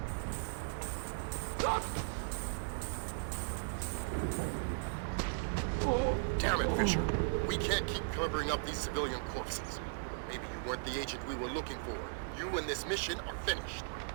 Damn it, Fisher. We can't keep covering up these civilian corpses. Maybe you weren't the agent we were looking for. You and this mission are finished.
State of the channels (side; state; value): left; silent; digital silence